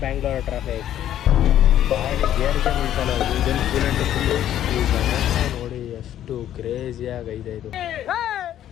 Bangalore traffic. ಗಾಡಿ ಗೇರ್ಗೆ ಬೀಳ್ತಾನೆ ಇದನ್ನು ಕೂಲೆಂಟ್ ನೋಡಿ ಎಷ್ಟು ಕ್ರೇಜಿಯಾಗಿ ಐತೆ ಇದು.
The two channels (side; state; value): right; quieter; 11.5 dB